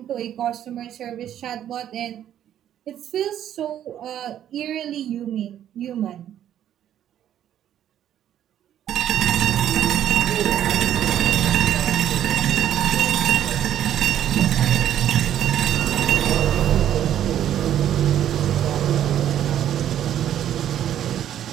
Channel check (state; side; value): quieter; left; 10.8 dB